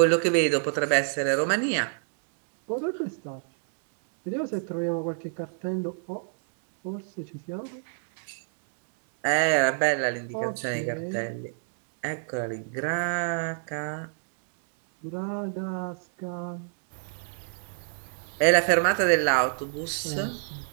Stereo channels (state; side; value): silent; left; 60 dB below the other